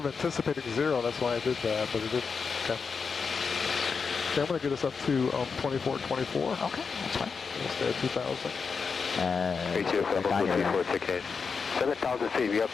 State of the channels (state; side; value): quieter; right; 5.4 dB